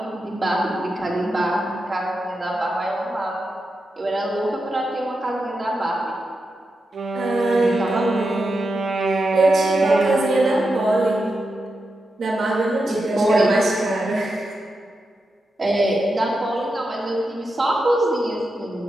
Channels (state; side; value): normal; both; correlation 0.88